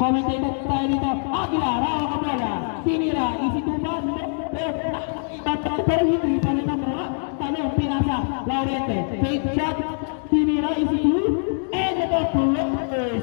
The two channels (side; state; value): right; silent; digital silence